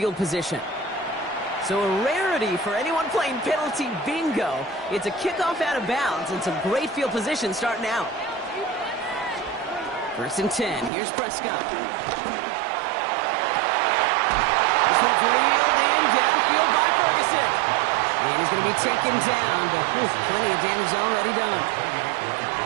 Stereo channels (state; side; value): drops out; left; at 10.9 s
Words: position. So a rarity for anyone playing penalty bingo. It's a kickoff out of bounds and some great field position starting out. 1st and 10. Here's Prescott. This one's reeled in downfield by Ferguson. And he's going to be taken down, but plenty of damage already done.